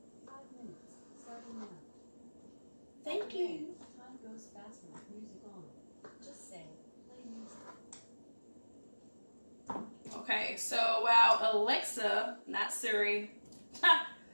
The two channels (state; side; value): inverted; both; correlation -1.00